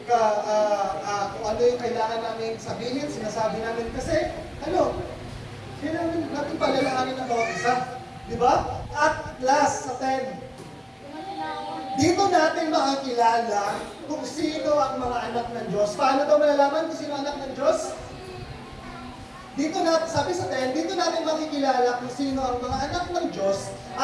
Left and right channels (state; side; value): identical; both; correlation 1.00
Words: ano yung kailangan namin sabihin, sinasabi namin kasi, kailangan natin palalaanin ng bawat isa. Di ba? At last, sa 10, dito natin makakilala kung sino ang mga anak ng Diyos. Paano daw malalaman kung sino ang anak ng Diyos? Dito natin, sabi sa 10, dito natin makikilala kung sino ang mga anak ng Diyos